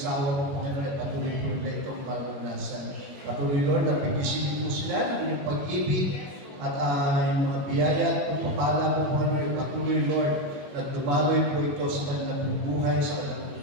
po Panginoon at patuloy po nila itong maranasan. Patuloy Lord, at pigisin po sila ng inyong pag-ibig at yung mga biyaya at pagpapala po Panginoon, patuloy Lord, na dumaloy po ito sa kanilang buhay, sa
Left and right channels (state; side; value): late; left; 21 ms